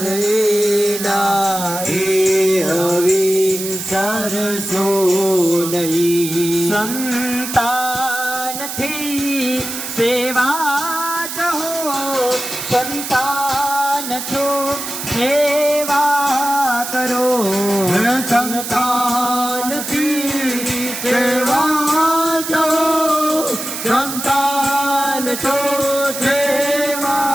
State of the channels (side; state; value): right; noise; hiss, 6 dB below the sound